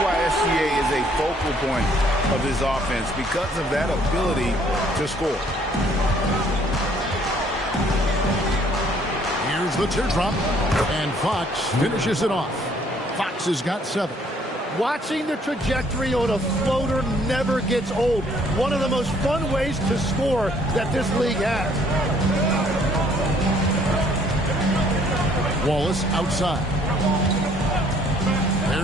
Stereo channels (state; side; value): normal; both; correlation 0.62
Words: why SGA is a focal point of his offense, because of that ability to score. Here's the teardrop, and Fox finishes it off. Fox has got 7. Watching the trajectory on a floater never gets old. One of the most fun ways to score that this league has. Wallace outside.